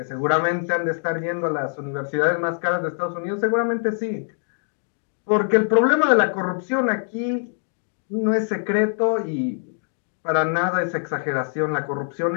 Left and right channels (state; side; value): silent; right; digital silence